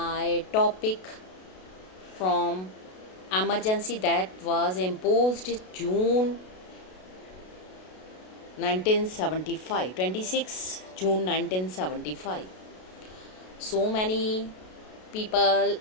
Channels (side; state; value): right; late; 32 ms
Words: topic from emergency that was imposed June 1975, 26 June 1975. So many people